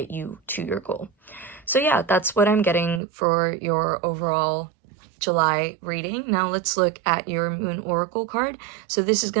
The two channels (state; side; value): drops out; left; at 3.0 s